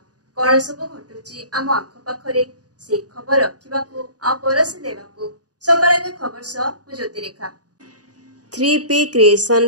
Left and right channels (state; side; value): late; left; 0.68 ms